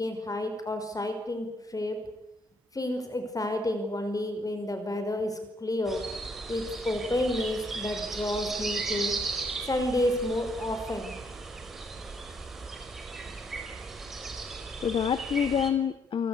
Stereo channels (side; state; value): both; normal; correlation 0.71